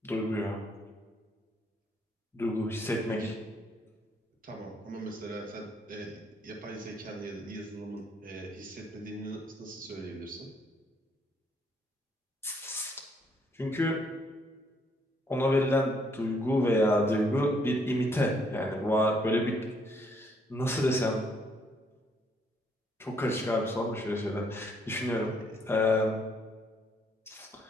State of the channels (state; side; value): normal; both; correlation 0.69